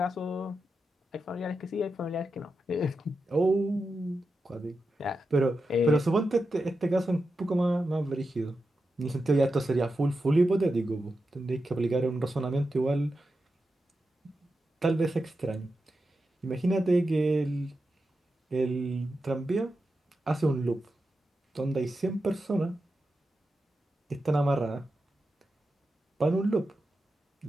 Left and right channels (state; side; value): normal; both; correlation 0.89